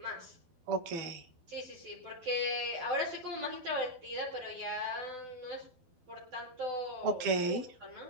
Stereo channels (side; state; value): left; late; 12 ms